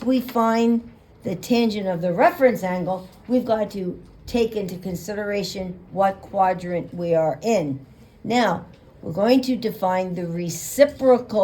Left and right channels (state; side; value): identical; both; correlation 1.00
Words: we find the tangent of the reference angle, we've got to take into consideration what quadrant we are in. Now, we're going to define the